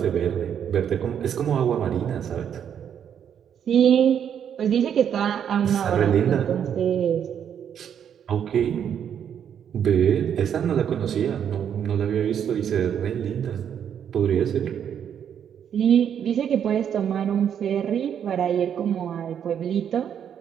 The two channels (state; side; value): quieter; left; 8.7 dB